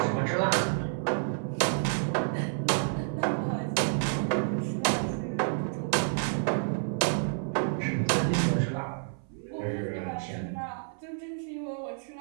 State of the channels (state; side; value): silent; left; 58 dB below the other